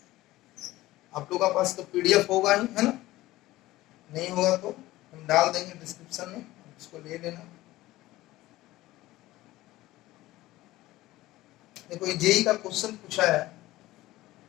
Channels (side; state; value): right; quieter; 17.2 dB